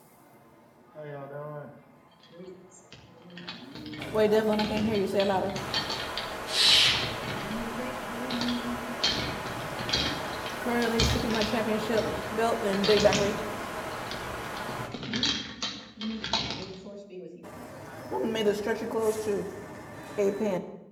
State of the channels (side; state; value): both; identical; correlation 1.00